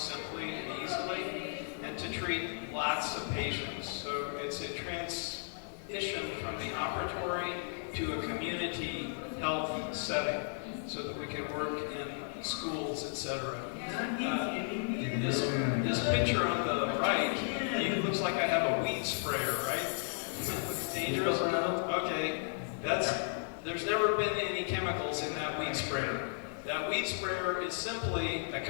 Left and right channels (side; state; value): right; silent; 55 dB below the other